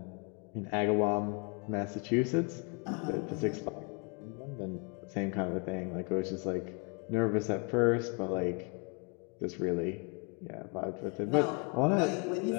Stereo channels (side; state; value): right; quieter; 35.3 dB